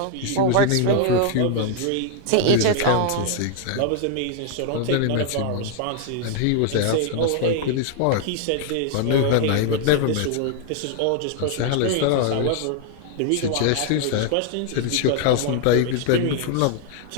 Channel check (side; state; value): both; different; correlation 0.00